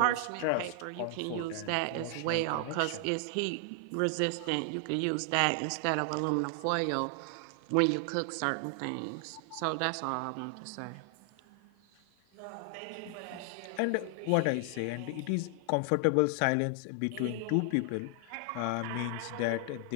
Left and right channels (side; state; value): both; different; correlation 0.00